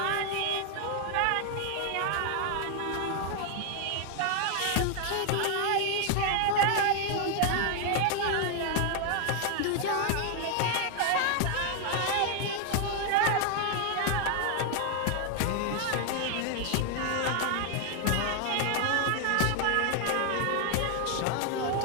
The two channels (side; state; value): both; different; correlation 0.00